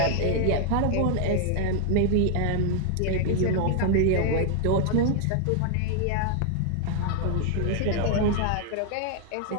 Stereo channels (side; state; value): both; different; correlation 0.00